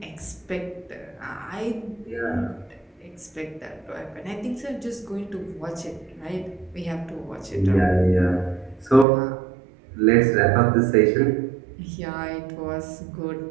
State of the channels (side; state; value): left; drops out; at 9.1 s